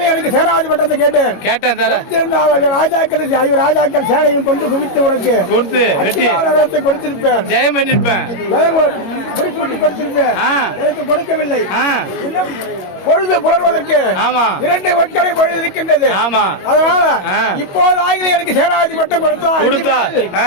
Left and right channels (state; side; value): late; right; 21 ms